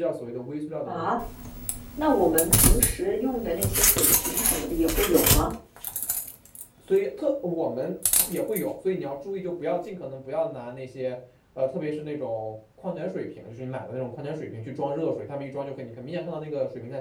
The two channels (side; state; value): both; identical; correlation 1.00